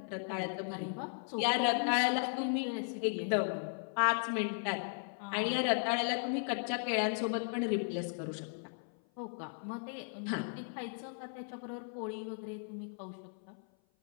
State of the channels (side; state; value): right; silent; 54 dB below the other